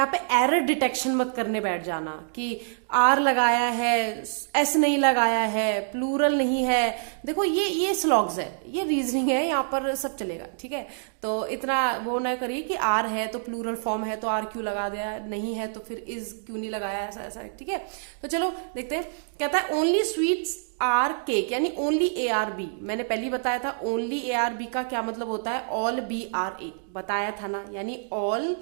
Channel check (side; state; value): left; silent; digital silence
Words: पे एरर डिटेक्शन मत करने बैठ जाना कि आर लगाया है, एस नहीं लगाया है, प्लूरल नहीं है। देखो ये स्लॉग्स है, ये रीजनिंग है, यहाँ पर सब चलेगा। ठीक है, तो इतना वो ना करिए कि आर है तो प्लूरल फॉर्म है तो आर क्यों लगा दिया, नहीं है तो फिर इज क्यों नहीं लगाया, ऐसा ऐसा। ठीक है, तो चलो देखते हैं। कहता है ओनली स्वीट्स आर केक, यानी ओनली ए आर बी। मैंने पहले बताया था ओनली ए आर बी का क्या मतलब होता है, ऑल बी आर ए, बताया था ना, यानी ऑल